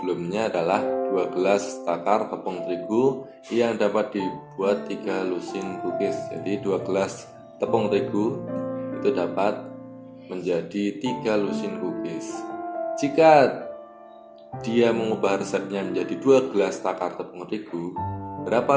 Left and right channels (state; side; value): identical; both; correlation 1.00